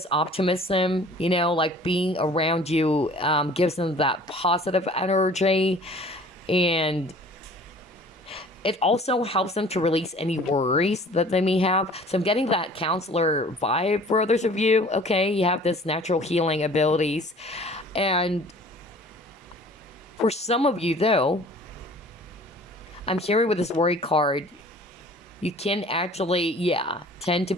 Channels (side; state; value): both; normal; correlation 0.49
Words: optimism, like being around you gives them that positive energy. And it also helps them to release any worries that they may have. So I'm getting that counselor vibe for others of you, okay? You have this natural healing abilities. And for some of you, though, I'm hearing with this worry card, you can actually, tend to